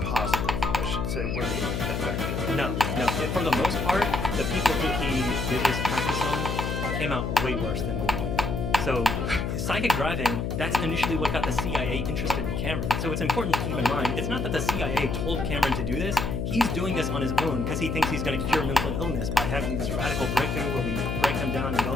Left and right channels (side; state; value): left; noise; hum, 1 dB below the sound